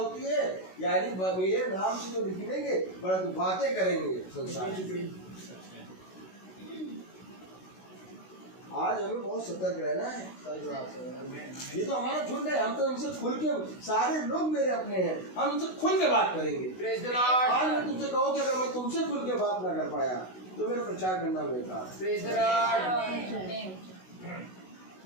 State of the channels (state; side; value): late; right; 16 ms